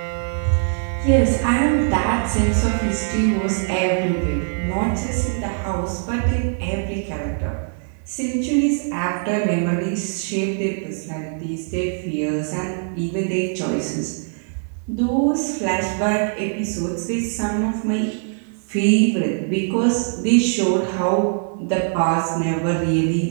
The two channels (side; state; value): left; silent; digital silence